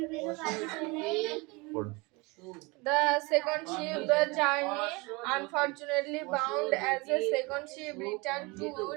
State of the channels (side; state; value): left; quieter; 26.3 dB